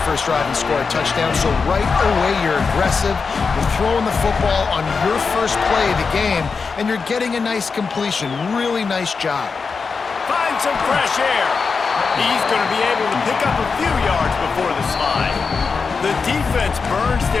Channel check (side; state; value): right; quieter; 5.0 dB